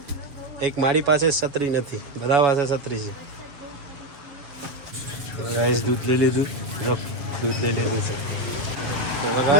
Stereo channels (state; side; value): late; left; 7.1 ms